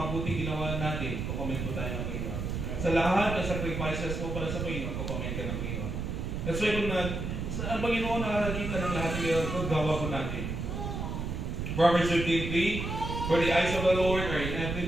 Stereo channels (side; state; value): right; noise; rumble, 3 dB below the sound